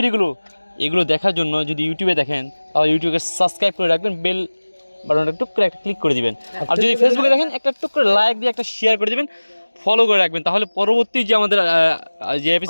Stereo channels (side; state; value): both; inverted; correlation -1.00